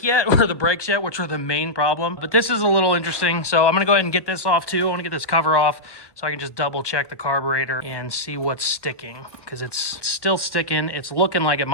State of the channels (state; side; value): late; right; 1.1 ms